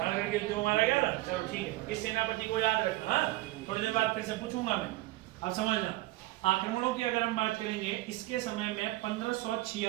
के युद्ध में मारा गया था। चलो ठीक है, इस सेनापति को याद रखना, थोड़ी देर बाद फिर से पूछूंगा मैं। अब समझना आक्रमणों की अगर हम बात करेंगे, इसके समय में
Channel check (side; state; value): left; quieter; 18.3 dB